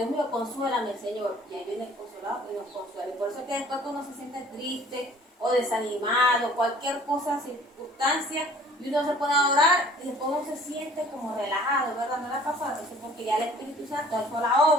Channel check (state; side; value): normal; both; correlation 0.51